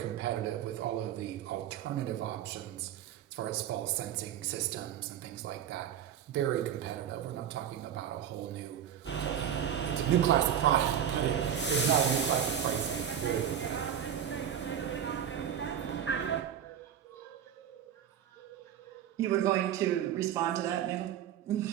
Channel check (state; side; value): quieter; left; 9.6 dB